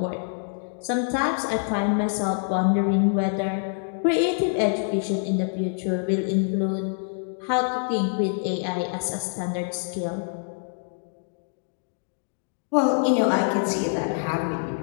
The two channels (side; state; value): right; silent; 61 dB below the other